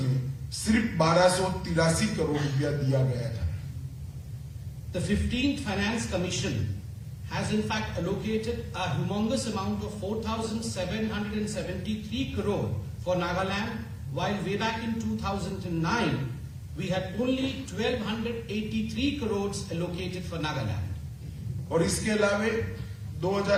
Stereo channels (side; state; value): both; identical; correlation 1.00